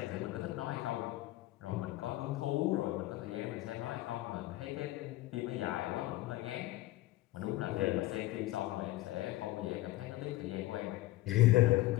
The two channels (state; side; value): quieter; right; 17.2 dB